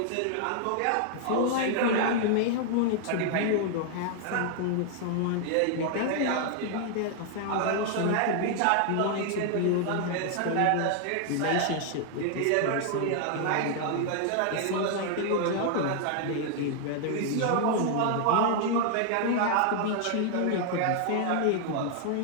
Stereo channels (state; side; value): different; both; correlation 0.00